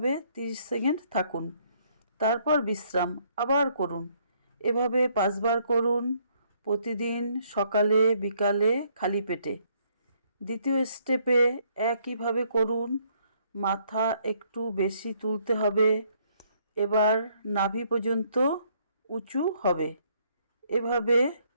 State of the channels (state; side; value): inverted; both; correlation -0.68